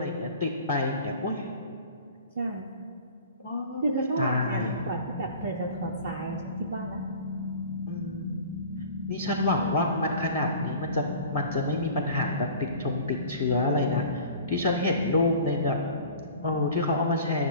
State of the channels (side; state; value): both; inverted; correlation -0.42